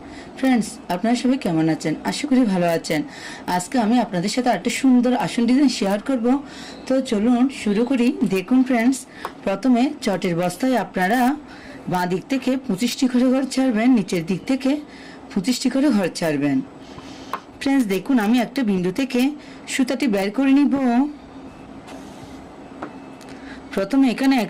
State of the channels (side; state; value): both; identical; correlation 1.00